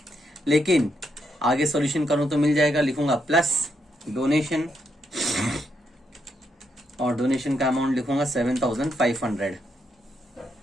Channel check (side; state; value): both; normal; correlation 0.79